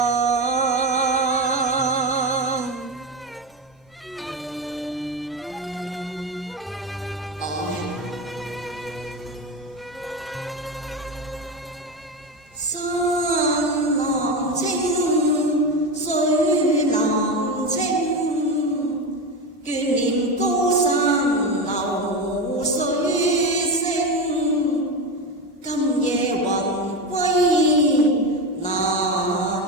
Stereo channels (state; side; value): normal; both; correlation 0.18